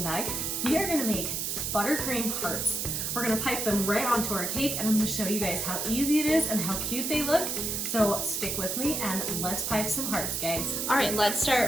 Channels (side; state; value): right; noise; hiss, 1 dB below the sound